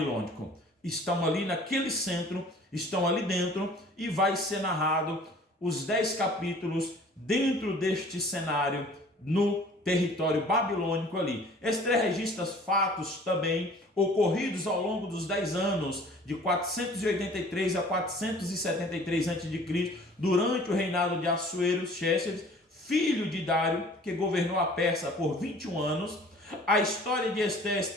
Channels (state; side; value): normal; both; correlation 0.50